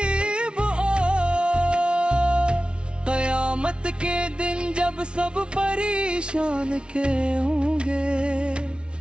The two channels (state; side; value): late; left; 0.057 ms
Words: ہو۔ قیامت کے دن جب سب پریشان کے ہوں گے،